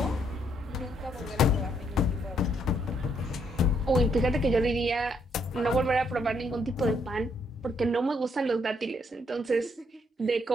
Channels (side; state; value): both; normal; correlation 0.72